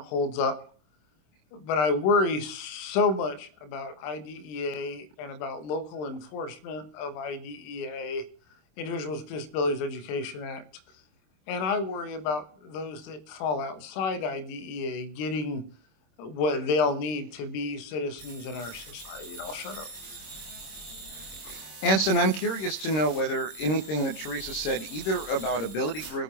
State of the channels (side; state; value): right; late; 26 ms